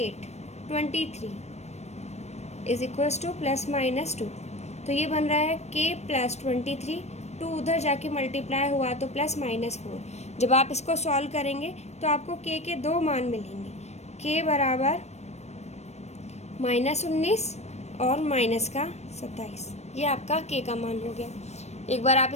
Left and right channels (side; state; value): right; late; 0.32 ms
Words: 23 is equals two plus minus 2, तो ये बन रहा है K + 23, 2 उधर जाके मल्टीप्लाई हुआ तो प्लस माइनस 4। जब आप इसको सॉल्व करेंगे तो आपको K के 2 मान मिलेंगे, K बराबर -19 और -27। ये आपका K का मान हो गया। एक बार आप